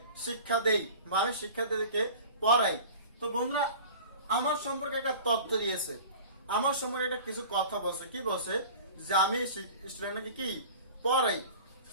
শিক্ষা দেই বা আমি শিক্ষার্থীদেরকে পড়াই। তো বন্ধুরা আমার সম্পর্কে একটা তথ্য দিয়েছে, আমার সম্পর্কে একটা কিছু কথা বলছে। কি বলছে? যে আমি স্টুডেন্টকে কি পড়াই।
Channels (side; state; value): both; inverted; correlation -0.40